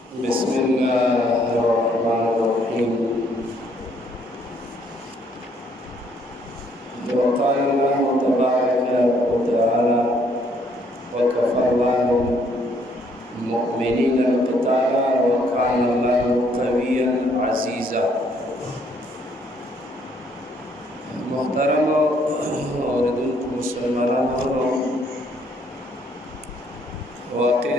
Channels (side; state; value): both; normal; correlation 0.67